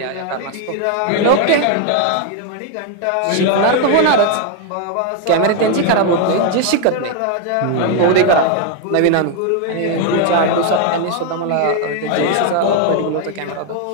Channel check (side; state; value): both; different; correlation 0.01